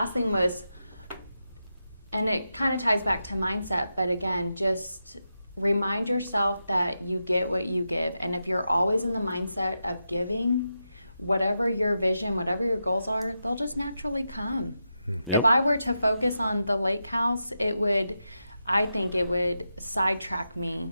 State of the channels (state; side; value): inverted; both; correlation -0.88